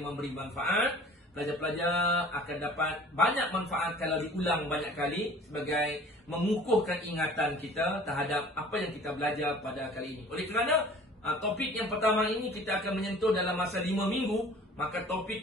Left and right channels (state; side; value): normal; both; correlation 0.47